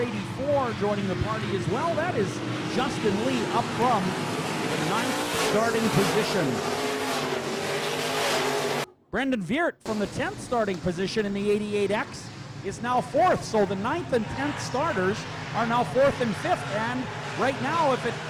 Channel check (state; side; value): identical; both; correlation 1.00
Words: joining the party as well. That is Justin Lee up from the 9th starting position. Brendan Veert from the 10th starting position in the 88X is now 4th. So the 9th and 10th starters are now 4th and 5th. And right now, if it